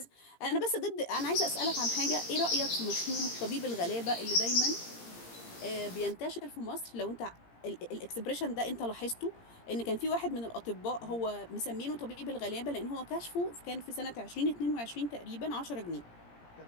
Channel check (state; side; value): late; right; 17 ms